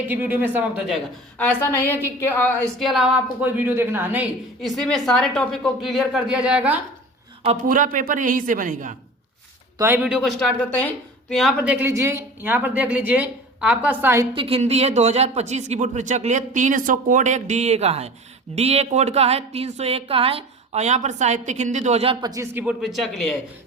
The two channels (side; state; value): both; normal; correlation 0.38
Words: ही वीडियो में समाप्त हो जाएगा। ऐसा नहीं है कि इसके अलावा आपको कोई वीडियो देखना है, नहीं, इसी में सारे टॉपिक को क्लियर कर दिया जाएगा और पूरा पेपर यहीं से बनेगा। तो आइए वीडियो को स्टार्ट करते हैं। तो यहाँ पर देख लीजिए, आपका साहित्यिक हिंदी है 2025 की बोर्ड परीक्षा के लिए 300 कोड एक डीए का है, डीए कोड का है, 301 का है। और यहाँ पर साहित्यिक हिंदी 2025 की बोर्ड परीक्षा के लिए है।